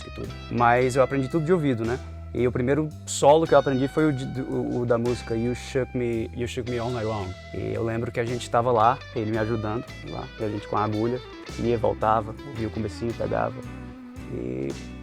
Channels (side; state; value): both; identical; correlation 1.00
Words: e tudo, mas eu aprendi tudo de ouvido, né. E o primeiro solo que eu aprendi foi o da música You Shook Me All Night Long. E eu lembro que a gente estava lá, ele me ajudando, lá, e a gente com a agulha, ia, voltava, ouvia o comecinho, pegava.